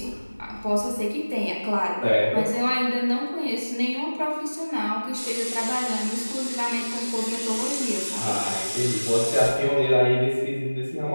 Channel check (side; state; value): both; inverted; correlation -1.00